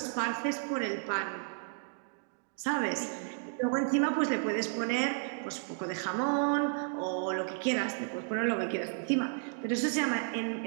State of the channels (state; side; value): silent; left; 56 dB below the other